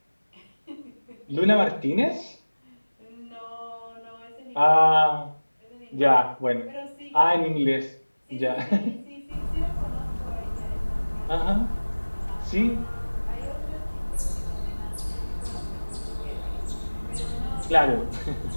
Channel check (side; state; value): both; inverted; correlation -1.00